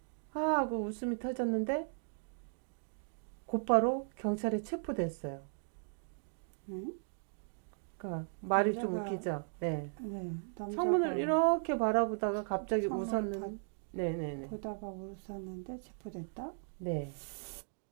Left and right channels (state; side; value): silent; left; digital silence